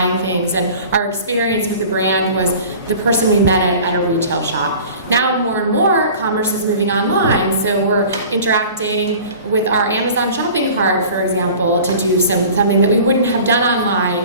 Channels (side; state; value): both; inverted; correlation -0.43